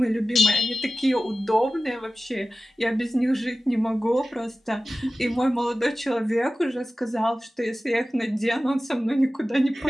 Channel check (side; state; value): both; normal; correlation 0.96